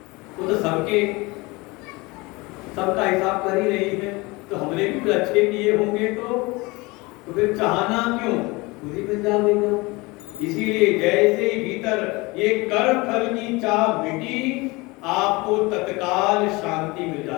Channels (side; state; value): right; quieter; 24.1 dB